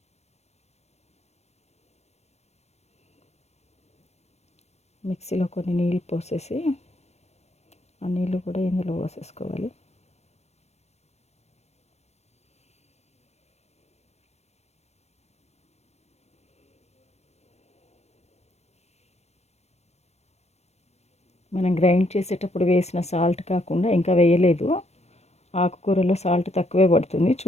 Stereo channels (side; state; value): right; late; 0.31 ms